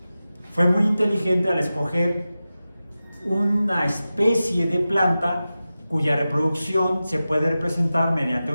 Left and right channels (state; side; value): inverted; both; correlation -0.94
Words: Fue muy inteligente al escoger una especie de planta cuya reproducción se puede representar mediante